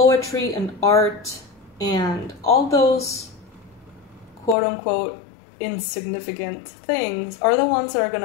and art and all those quote-unquote insignificant things are the ones that are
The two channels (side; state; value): right; drops out; at 4.5 s